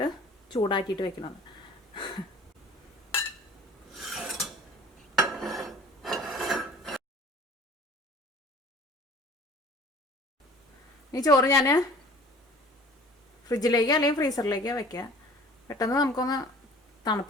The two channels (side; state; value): both; normal; correlation 0.47